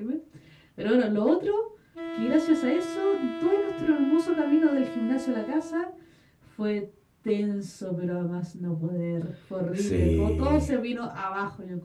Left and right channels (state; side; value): identical; both; correlation 1.00